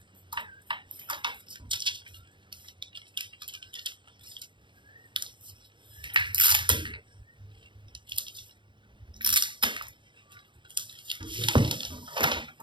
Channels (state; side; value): late; left; 0.23 ms